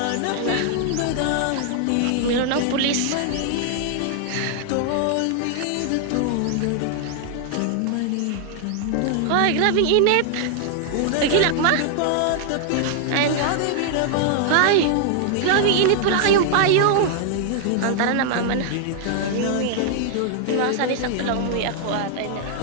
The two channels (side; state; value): both; different; correlation -0.01